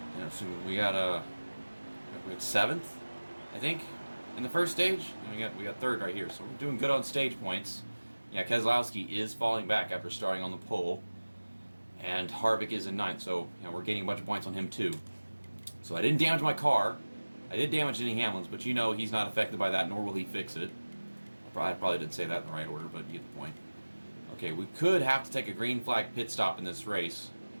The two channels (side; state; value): both; inverted; correlation -1.00